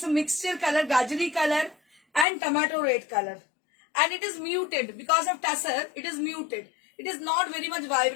a mixture color, Gajari color and tomato red color. And it is muted because of tussar. It is muted. It is not very much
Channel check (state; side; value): drops out; right; at 2.2 s